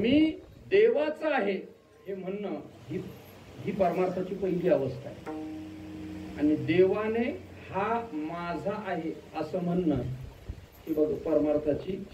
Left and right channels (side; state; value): both; identical; correlation 1.00